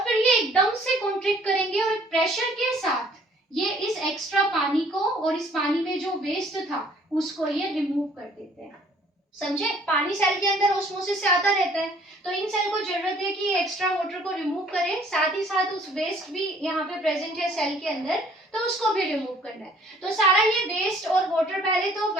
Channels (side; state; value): both; normal; correlation 0.58